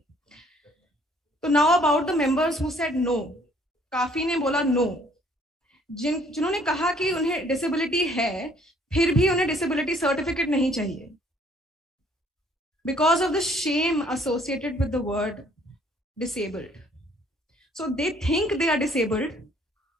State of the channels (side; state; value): both; normal; correlation 0.61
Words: So now about the members who said no, काफी ने बोला no. जिन्होंने कहा कि उन्हें disability है, फिर भी उन्हें disability certificate नहीं चाहिए. Because of the shame associated with the word disabled. So they think they are disabled,